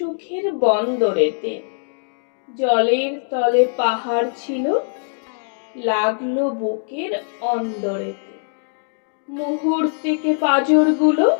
বন্দরেতে। জলের তলে পাহাড় ছিল, লাগলো বুকের অন্দরেতে। মুহূর্তেকে পাঁজরগুলো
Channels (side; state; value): right; silent; digital silence